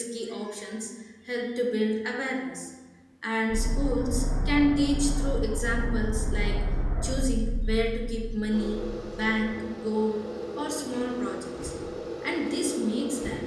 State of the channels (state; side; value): identical; both; correlation 1.00